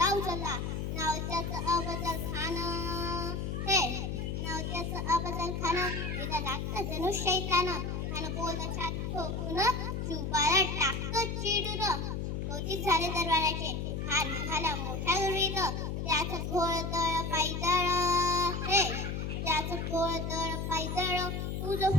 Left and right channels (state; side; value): noise; left; hum, 3 dB below the sound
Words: उचलला. नाव त्याचं अफजल खान हे, नाव त्याचं अफजल खान. एका जागतं जणू शैतान. त्यानं बोललं छाती ठोकून, शिवबाला टाकतं चिडून. कौतिक झाले दरबाराचे, हार निघाला मोठा गुरवीत. त्याचं घोळदळ पायदळ हे, त्याचं घोळदळ पायदळ, तुझं